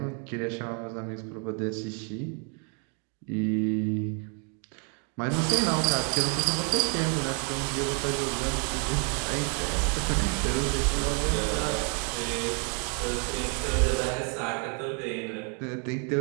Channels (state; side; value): quieter; left; 39.3 dB